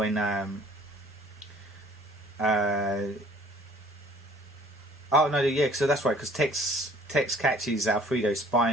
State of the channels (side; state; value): both; normal; correlation 0.55